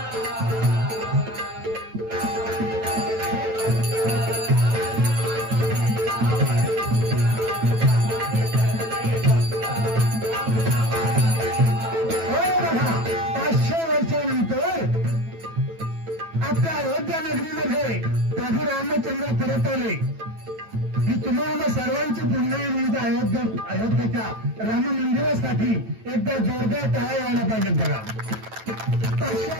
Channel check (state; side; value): late; left; 9.1 ms